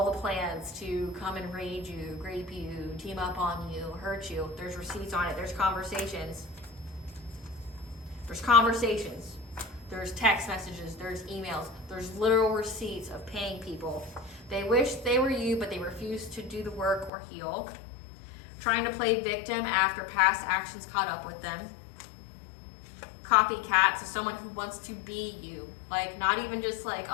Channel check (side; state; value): right; drops out; at 17.1 s